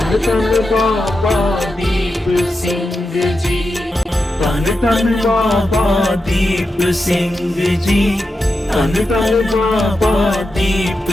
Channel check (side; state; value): both; normal; correlation 0.89